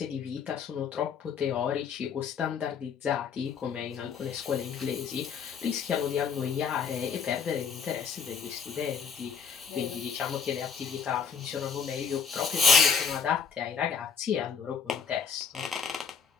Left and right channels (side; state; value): right; quieter; 6.5 dB